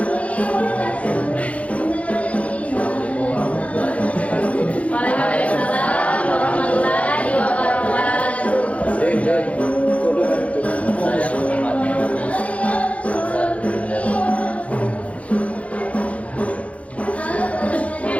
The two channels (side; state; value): right; late; 0.065 ms